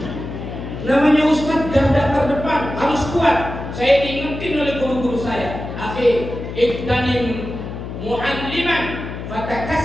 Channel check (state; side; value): noise; left; hum, 8 dB below the sound